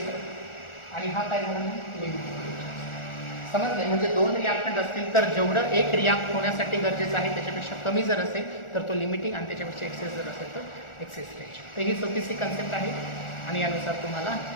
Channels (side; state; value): right; late; 1.4 ms